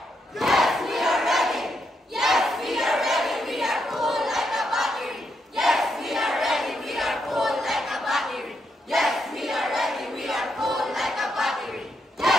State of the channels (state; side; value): normal; both; correlation 0.80